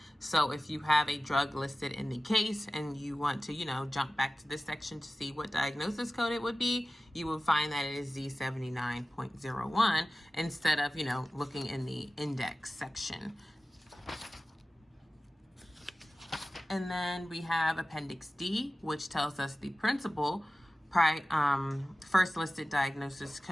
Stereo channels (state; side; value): normal; both; correlation 0.96